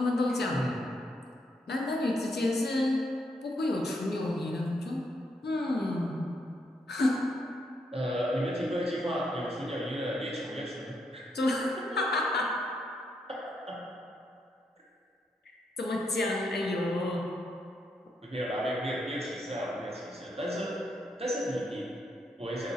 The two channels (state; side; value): normal; both; correlation 0.78